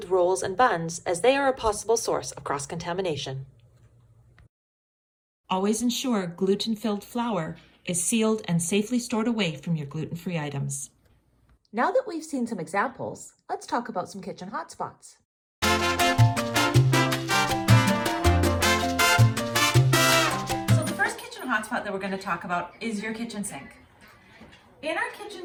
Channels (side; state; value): both; identical; correlation 1.00